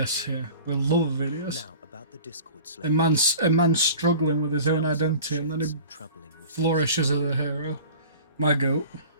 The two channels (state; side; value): inverted; both; correlation -0.41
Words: here. We love Vidius. Now about the Discord A slave. man's struggling with his own Sounds like identity, and then he shares some troubling whispers. flourishes as a hero. My goat.